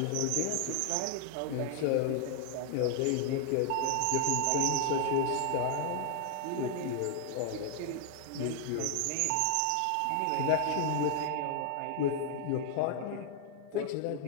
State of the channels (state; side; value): different; both; correlation 0.00